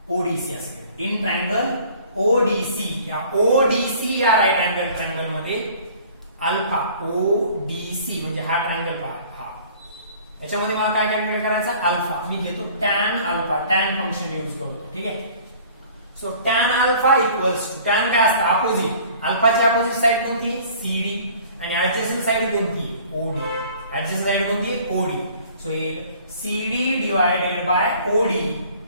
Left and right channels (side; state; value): both; inverted; correlation -0.51